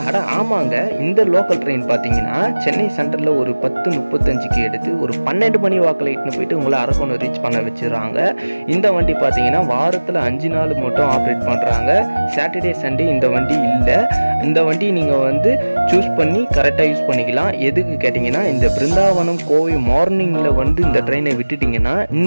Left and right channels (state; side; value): inverted; both; correlation -1.00